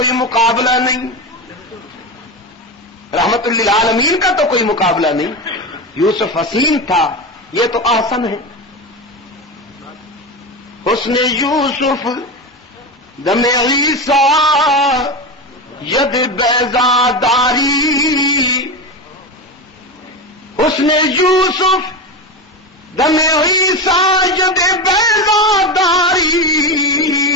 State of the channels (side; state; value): both; normal; correlation 0.20